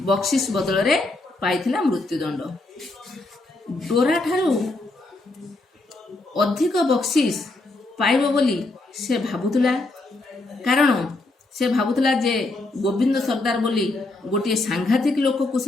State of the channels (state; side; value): quieter; right; 3.0 dB